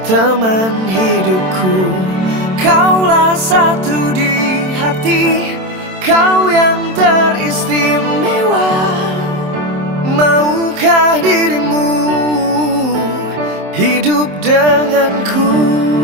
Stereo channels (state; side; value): late; left; 27 ms